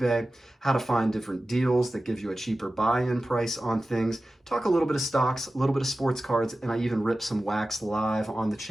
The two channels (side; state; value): both; normal; correlation 0.95